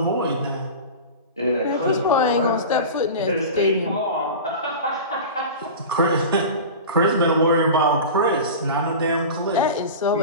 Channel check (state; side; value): inverted; both; correlation -0.31